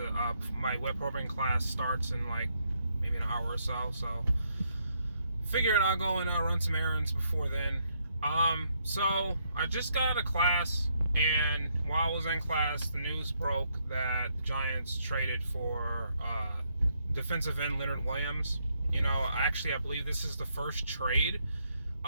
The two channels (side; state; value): both; inverted; correlation -0.75